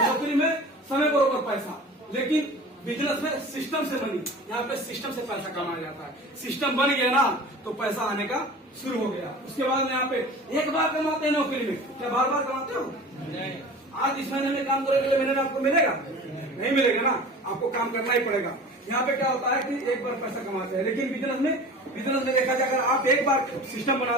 नौकरी में समय बरोबर पैसा, लेकिन बिजनेस में सिस्टम से बनी, यहाँ पे सिस्टम से पैसा कमाया जाता है। सिस्टम बन गया ना तो पैसा आने का शुरू हो गया। उसके बाद में यहाँ पे एक बार कमाते हैं नौकरी में, क्या बार बार कमाते हो? नहीं। आज इस महीने में काम करोगे, अगले महीने में आपको मिलेगा? नहीं मिलेगा ना, आपको काम करना ही पड़ेगा। यहाँ पे क्या होता है कि एक बार पैसा कमाते हैं, लेकिन बिजनेस में देखा जाए, अगर आप एक बार सिस्टम बना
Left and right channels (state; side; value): normal; both; correlation 0.39